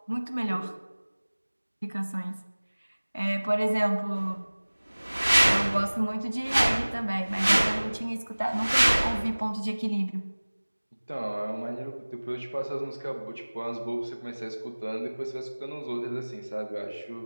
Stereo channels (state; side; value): inverted; both; correlation -1.00